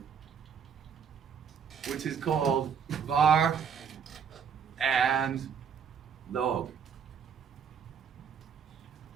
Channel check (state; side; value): quieter; left; 7.1 dB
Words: which is called var and log.